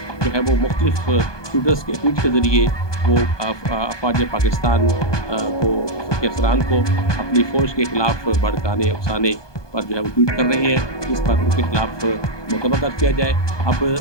जो है वो मुख्तलिफ ट्वीट के ज़रिए वो अफवाज पाकिस्तान के अफसरान को अपनी फ़ौज के खिलाफ भड़काने उकसाने पर जो है वो ट्वीट कर रहे हैं, इस पर उनके खिलाफ मुकदमा दर्ज किया जाए।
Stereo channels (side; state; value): right; late; 1.2 ms